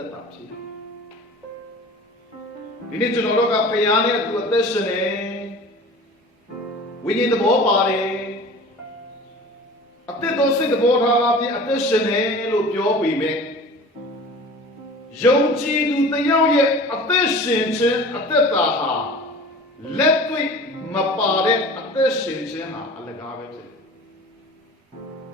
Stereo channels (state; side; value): normal; both; correlation 0.40